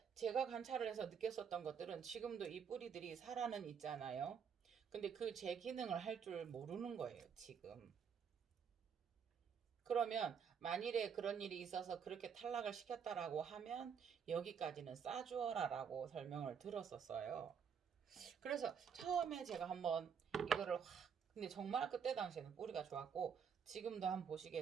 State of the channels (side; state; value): left; quieter; 7.1 dB